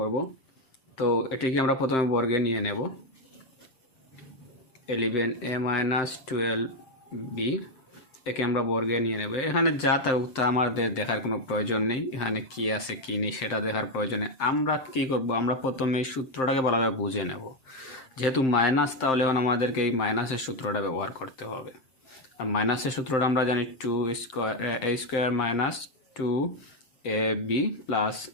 তো এটিকে আমরা প্রথমে বর্গে নিয়ে নেব। 11a মাইনাস 12b একে আমরা বর্গে নিয়ে নেব। এখানে যা থাকুক তা আমাদের দেখার কোনো প্রয়োজন নেই, এখানে কি আছে কি নেই সেটা দেখার প্রয়োজন নেই। আমরা কি করব, আমরা প্রথমে এই সূত্রটাকে ভালোভাবে বুঝে নেব। যেহেতু মাইনাস, তাহলে এখন আমাদেরকে এই মাইনাসের সূত্রটা ব্যবহার করতে হবে। আর মাইনাসের সূত্রটা আমরা জানি 2 square a square minus 2ab plus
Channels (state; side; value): late; right; 7.6 ms